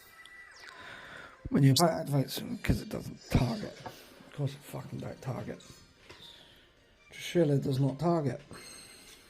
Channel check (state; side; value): identical; both; correlation 1.00